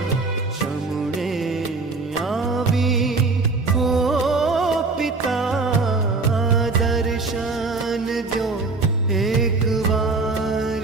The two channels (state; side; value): quieter; left; 3.8 dB